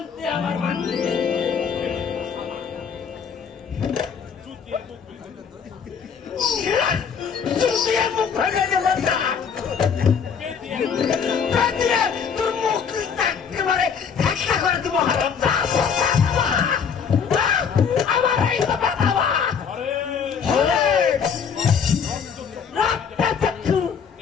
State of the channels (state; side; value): quieter; right; 6.7 dB